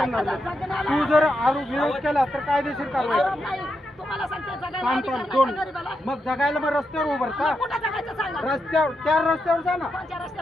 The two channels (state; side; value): normal; both; correlation 0.84